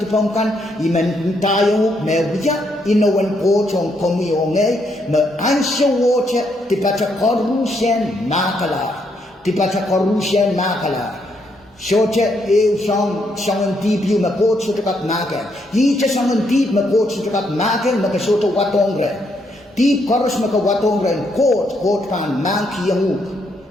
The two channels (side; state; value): both; normal; correlation 0.75